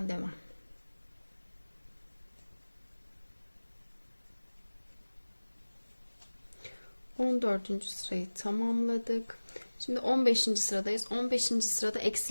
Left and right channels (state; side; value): inverted; both; correlation -1.00